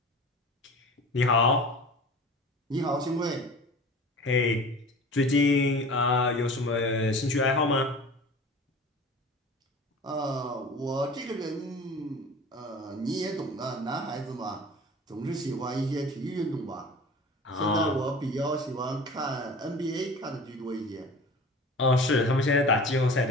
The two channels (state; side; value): normal; both; correlation 0.39